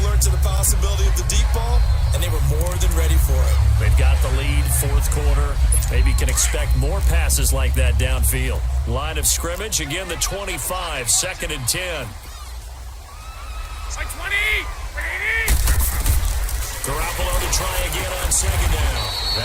alert to the possibility of the deep ball, and they were more than ready for it. They've got the lead, 4th quarter. Maybe can expect more passes like that downfield. Line of scrimmage, again the 25, 2nd and 10. Like 20! Garoppolo to try again on 2nd down.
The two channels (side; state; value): both; identical; correlation 1.00